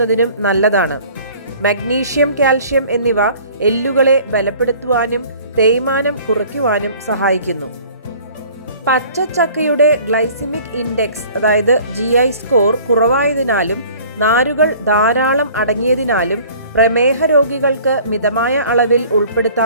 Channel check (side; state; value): both; inverted; correlation -0.50